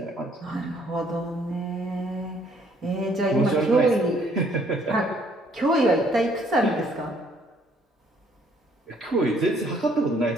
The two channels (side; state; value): both; normal; correlation 0.64